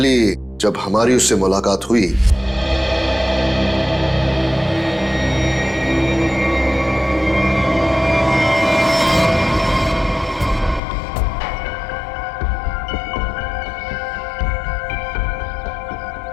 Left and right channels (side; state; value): right; drops out; at 10.8 s